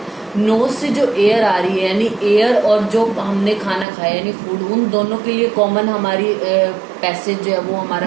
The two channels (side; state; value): left; drops out; at 3.9 s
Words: नोज से जो एयर आ रही है यानी एयर और जो हमने खाना खाया यानी फूड, उन दोनों के लिए कॉमन हमारी पैसेज जो है वो हमारा